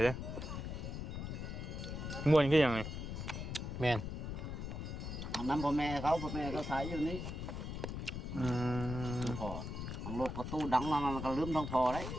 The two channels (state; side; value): noise; left; rumble, 5 dB below the sound